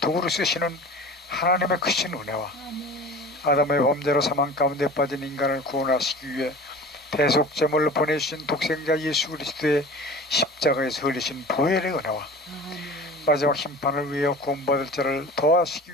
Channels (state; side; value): normal; both; correlation 0.38